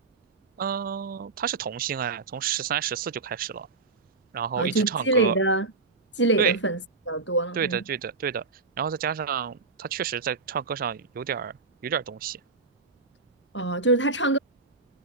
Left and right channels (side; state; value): left; quieter; 4.0 dB